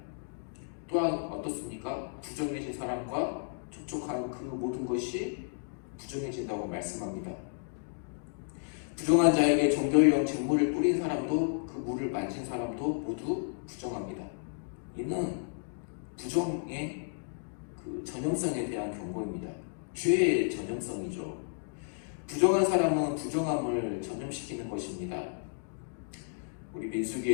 또한 어떻습니까? 부정해진 사람과 접촉한 그 모든 것이 부정해진다고 말씀합니다. 부정한 자에게 정결용 잿물을 뿌린 사람도 그 물을 만진 사람도 모두 부정합니다. 이는 부정의 그 전형성에 대한 경고입니다. 죄의 전형성이죠. 부정한 사람은 부정함을 전염시키는 것입니다. 우리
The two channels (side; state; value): right; silent; digital silence